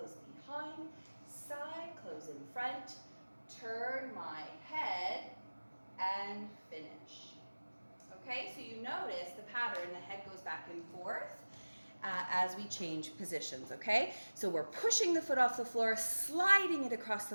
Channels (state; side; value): inverted; both; correlation -1.00